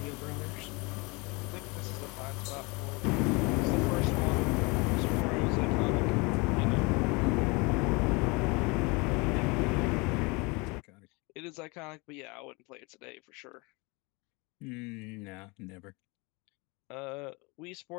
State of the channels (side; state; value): right; quieter; 27.4 dB